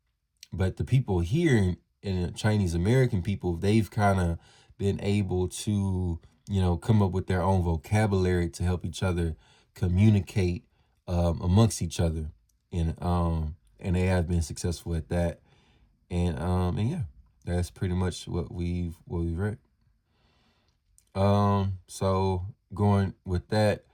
but the people here in Chinese American people, they've kind of been able to, come up with their own vocabulary to help each other communicate amongst each other. And they have been successful at that. And yeah, that's pretty much what we've read. So going with that,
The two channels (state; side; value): identical; both; correlation 1.00